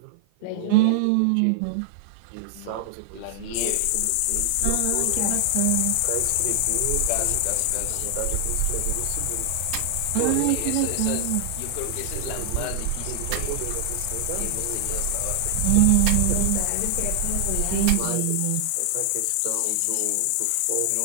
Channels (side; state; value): both; different; correlation 0.00